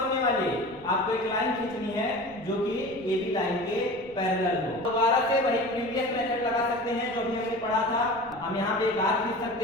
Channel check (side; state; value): left; noise; rumble, 25 dB below the sound